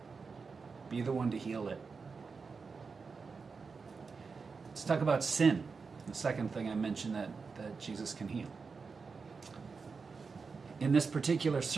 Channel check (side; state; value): left; quieter; 4.9 dB